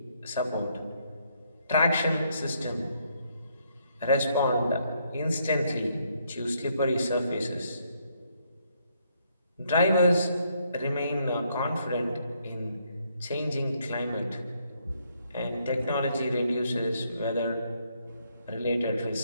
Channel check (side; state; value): both; inverted; correlation -0.73